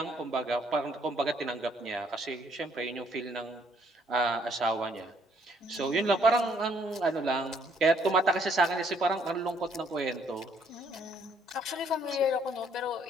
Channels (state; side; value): normal; both; correlation 0.66